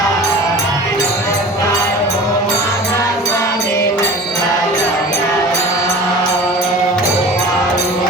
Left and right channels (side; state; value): both; normal; correlation 0.39